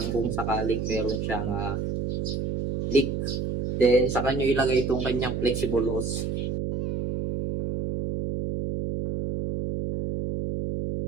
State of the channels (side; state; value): right; noise; hum, 2 dB below the sound